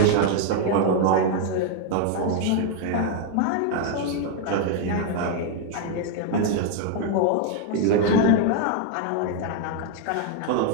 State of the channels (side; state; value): both; different; correlation 0.00